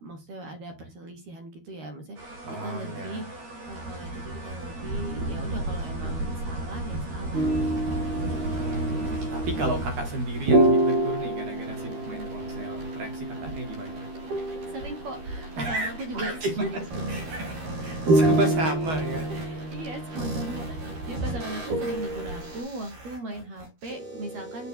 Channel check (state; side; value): late; left; 13 ms